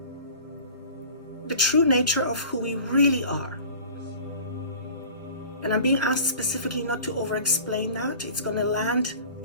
the true nature of who we really are. And I'm being asked specifically not to over-explain that. It's going to land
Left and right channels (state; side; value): inverted; both; correlation -0.42